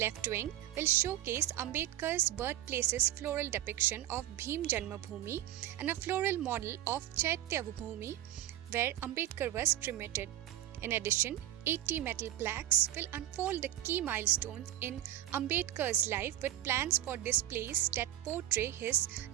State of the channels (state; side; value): quieter; left; 13.0 dB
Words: wing will showcase Ambedkar's birthplace's floral depiction of Bhim Janmabhoomi and a floral model of Chaitya Bhoomi where Ambedkar was cremated. In addition, 80 metal plaques will unfold the key milestones in Ambedkar's life with plans for displays that portray his